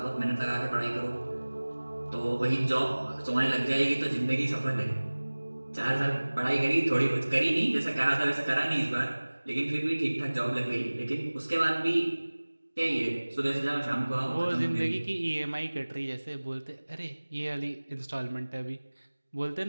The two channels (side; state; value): both; inverted; correlation -1.00